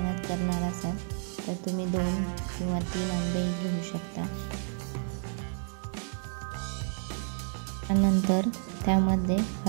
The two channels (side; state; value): left; silent; 57 dB below the other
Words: करणार असाल तर तुम्ही 2 किंवा 3 आंबेही घेऊ शकता। त्यानंतर त्यामध्ये